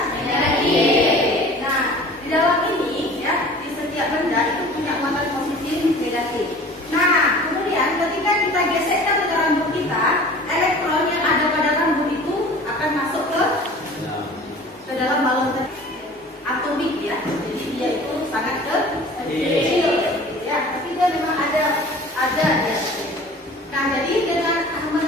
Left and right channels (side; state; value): both; normal; correlation 0.44